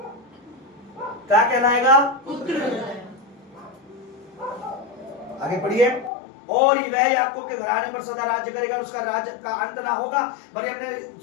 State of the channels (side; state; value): right; drops out; at 6.1 s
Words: क्या कहलाएगा? आगे पढ़िए। और वह याकूब के घराने पर सदा राज्य करेगा, उसका राज्य का अंत ना होगा। मरियम ने